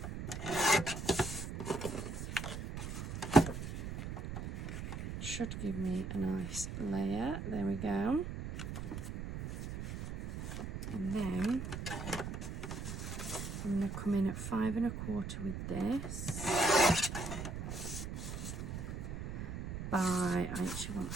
Should give me a nice layer. There we go. And then I'm going to come in at 5.25 with this. I actually want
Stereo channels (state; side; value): noise; right; rumble, 6 dB below the sound